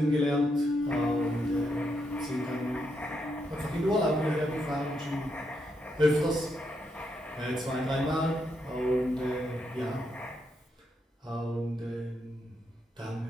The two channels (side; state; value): both; normal; correlation 0.80